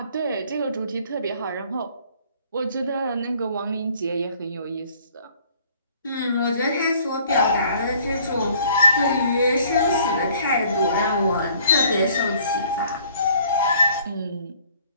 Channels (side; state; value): both; inverted; correlation -0.58